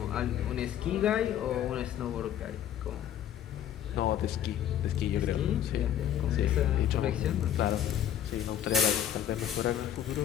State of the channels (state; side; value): quieter; right; 10.4 dB